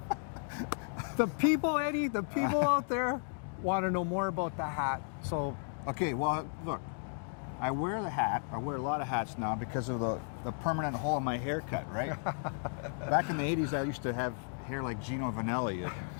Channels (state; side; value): silent; right; 55 dB below the other